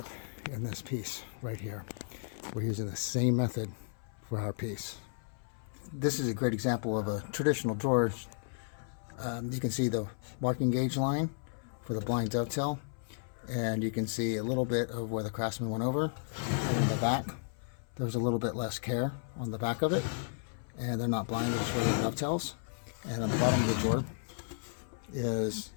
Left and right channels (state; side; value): silent; right; 55 dB below the other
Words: in this piece right here. We're using the same method for our piece. This is a great example of a traditional drawer. You can see the marking gauge line for the blind dovetail, and you can see a little bit of where the craftsman went over. And in the back, there's a little bit less care on the back of it, and they're not blind, they're just regular dovetails. And on the bottom of the drawer is